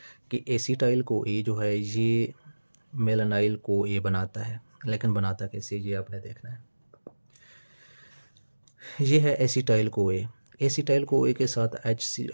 कि एसिटाइल CoA जो है ये मेलानाइल CoA बनाता है। लेकिन बनाता कैसे, ये आपने देखना है। ये है एसिटाइल CoA। एसिटाइल CoA के साथ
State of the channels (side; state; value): both; inverted; correlation -1.00